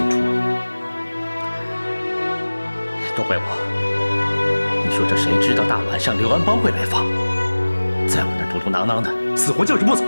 出。都怪我！你说这谁知道大晚上刘安邦会来访，在我那儿嘟嘟囔囔的，死活就是不走。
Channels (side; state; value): both; inverted; correlation -1.00